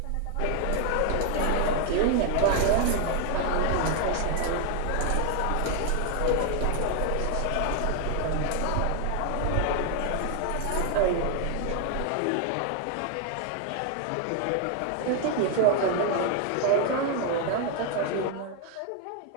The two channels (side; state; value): both; different; correlation 0.01